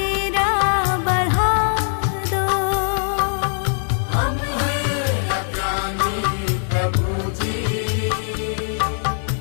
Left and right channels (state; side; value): silent; right; 61 dB below the other